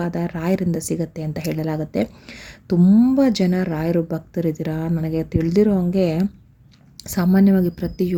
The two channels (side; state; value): both; identical; correlation 1.00